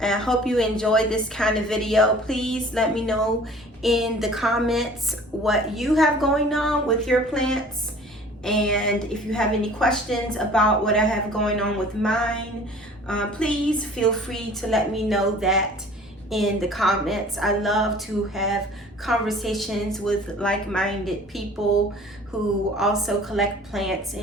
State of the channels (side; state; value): both; normal; correlation 0.48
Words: I hope you enjoy this kind of video. Please let me know in the comments what you have going on with your plants, and if you have any questions about what I have going on with mine, please feel free to let me know that in the comments. I love to have conversations with like-minded people who also collect plants